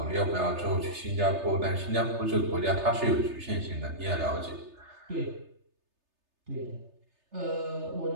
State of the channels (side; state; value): left; late; 3.3 ms